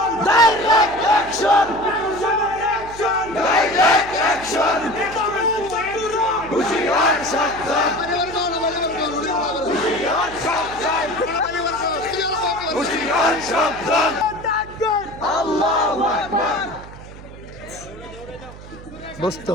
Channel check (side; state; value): right; noise; hum, 16 dB below the sound